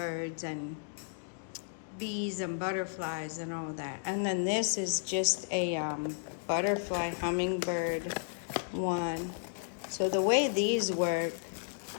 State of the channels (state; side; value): silent; right; digital silence